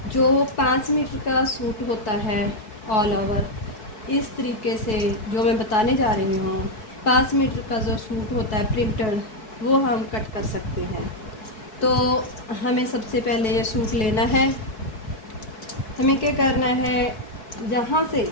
जो 5 मीटर का सूट होता है ऑल ओवर, इस तरीके से जो मैं बताने जा रही हूँ, 5 मीटर का जो सूट होता है प्रिंटेड, वो हम कट कर सकते हैं। तो हमें सबसे पहले ये सूट लेना है। हमें क्या करना है, जहाँ से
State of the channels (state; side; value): late; right; 4.6 ms